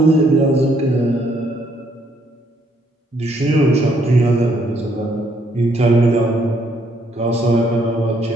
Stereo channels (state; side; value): normal; both; correlation 0.70